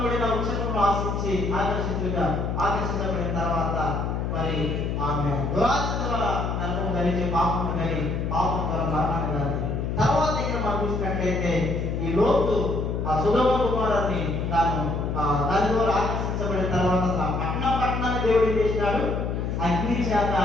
వృక్షంలో ఆకర్షించబడిన తర్వాత మరి ఆమె దురాశ ద్వారా నరకం కలిగి పాపం కలిగి పాపం ద్వారా మరణాన్ని కలిగి తర్వాత ఇక్కడ మనం చూసినట్లయితే ఈ లోతు ఆ సొదొమ గొమొర్రాని దాని ద్వారా ఆకర్షించబడిన తర్వాత పట్టణాన్ని దేవుడు ఏం చేసినాడు? అగ్ని చేత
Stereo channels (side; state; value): left; noise; hum, 1 dB below the sound